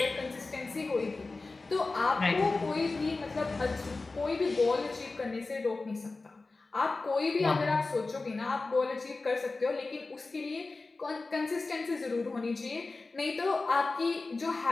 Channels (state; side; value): quieter; right; 3.6 dB